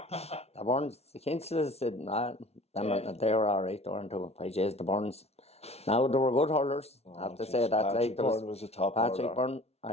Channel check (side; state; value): right; late; 0.31 ms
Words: Kinsels, they were alright, weren't they? The Burns. Now, they were good hurlers, I have to say that. Patrick Byrne was a top Patrick hurler. Byrne,